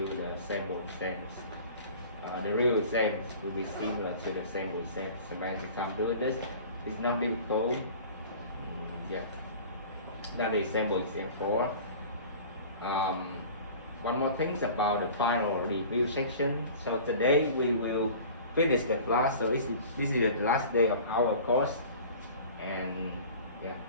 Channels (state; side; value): inverted; both; correlation -0.42